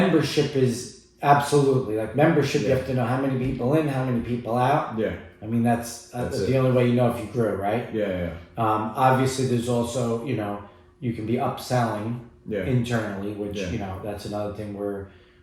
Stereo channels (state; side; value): identical; both; correlation 1.00